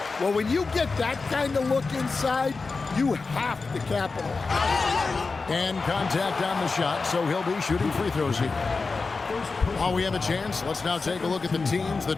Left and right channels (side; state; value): right; quieter; 4.2 dB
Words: Well, when you get that kind of look inside, you have to capitalize. And contact on the shot, so he'll be shooting free throws here. While we have a chance, let's now take a look at the teams